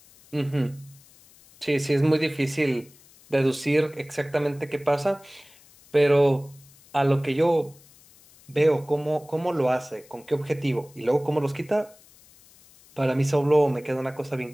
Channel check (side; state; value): left; noise; hiss, 26 dB below the sound